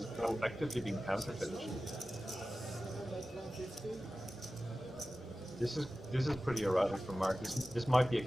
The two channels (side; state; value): both; normal; correlation 0.95